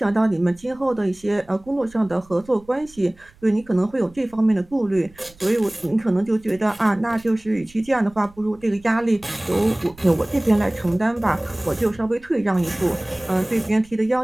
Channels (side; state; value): right; noise; rumble, 26 dB below the sound